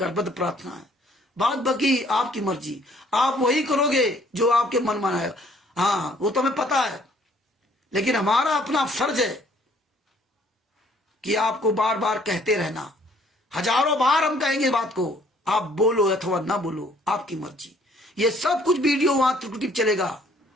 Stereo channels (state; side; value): normal; both; correlation 0.61